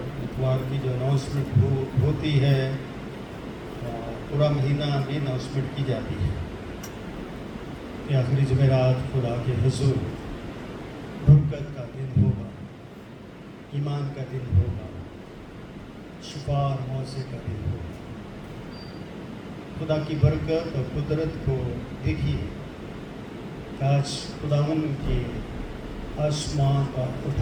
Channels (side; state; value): both; identical; correlation 1.00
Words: اتوار کی جو اناؤنسمنٹ ہوتی ہے پورا مہینہ میں اناؤنسمنٹ کی جاتی ہے کہ آخری جمعرات خدا کے حضور برکت کا دن ہوگا، ایمان کا دن ہوگا، شفا اور موعظے کا دن ہوگا۔ خدا کی برکت اور قدرت کو دیکھیے کہ آج خداوند کے آسمان پر